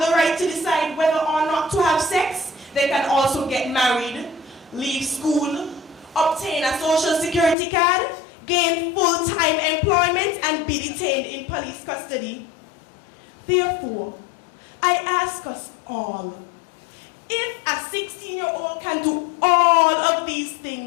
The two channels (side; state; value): right; drops out; at 7.6 s